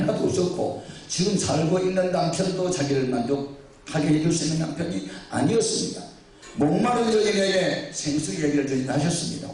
없었고 지금 살고 있는 남편도 자기를 만족하게 해줄 수 있는 남편이 아니었습니다. 목마른 여인에게 생수 얘기를 저희는 하셨습니다.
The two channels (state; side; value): identical; both; correlation 1.00